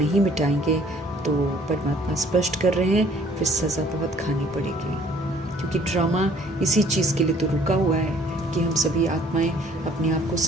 मिटाएंगे, तो परमात्मा स्पष्ट कर रहे हैं फिर सज़ा बहुत खानी पड़ेगी। क्योंकि ड्रामा इसी चीज़ के लिए तो रुका हुआ है कि हम सभी आत्माएं अपने आप को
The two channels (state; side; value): normal; both; correlation 0.57